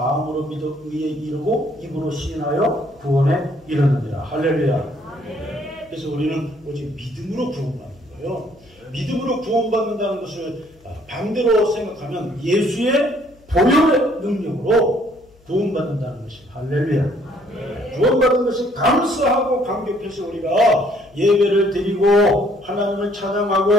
믿어 의에 이르고 입으로 시인하여 구원에 이르느니라. 할렐루야. 네. 그래서 우리는 오직 믿음으로 구원받는 거예요. 믿음으로 구원받는다는 것을 반대로 생각하면 예수의 보혈의 능력으로 구원받는다는 것이 할렐루야. 네. 구원받은 것이 감사하고 감격해서 우리가 예배를 드리고 하나님을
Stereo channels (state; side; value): noise; left; hum, 29 dB below the sound